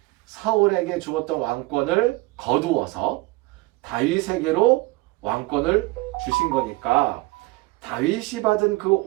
사울에게 주었던 왕권을 거두어서 다윗에게로 왕권을 주신 거니까 다윗이 받은 그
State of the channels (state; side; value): quieter; left; 22.1 dB